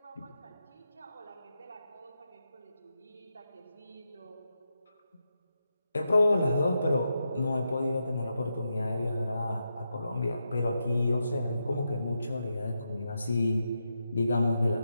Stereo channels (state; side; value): inverted; both; correlation -0.86